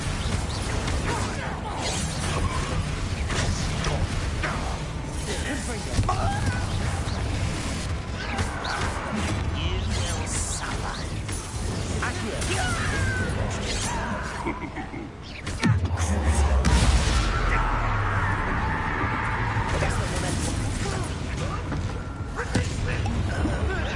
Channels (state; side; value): identical; both; correlation 1.00